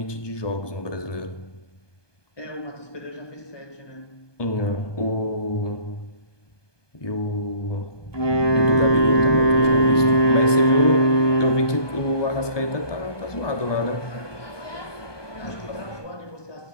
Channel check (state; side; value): late; right; 1.2 ms